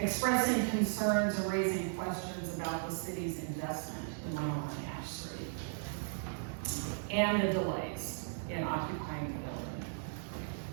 concerns and raising questions about the city's investment in 101 Ash Street and the delays in occupying the building.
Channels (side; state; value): left; silent; digital silence